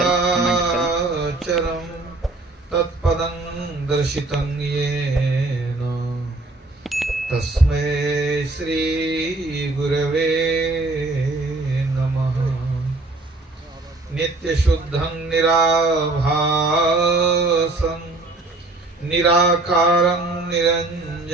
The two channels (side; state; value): left; quieter; 3.1 dB